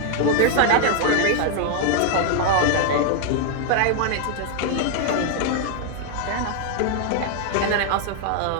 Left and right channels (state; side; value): different; both; correlation 0.00